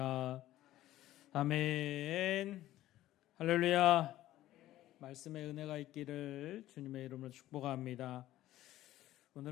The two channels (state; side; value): quieter; right; 14.5 dB